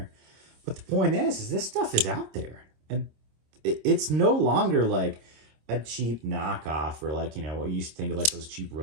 But the point is this stuff is out there. And it's no longer like a cheap knockoff or like, what you used to think of like those cheap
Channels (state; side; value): late; left; 26 ms